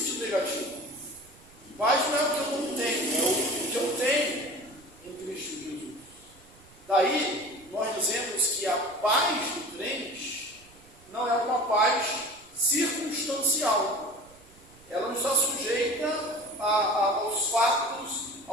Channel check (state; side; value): noise; right; rumble, 26 dB below the sound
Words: negativo. Paz não é o que eu não tenho, é o que eu tenho em Cristo Jesus. Daí, nós dizemos que a paz do crente não é uma paz circunstancial. Ela não está sujeita aos fatos,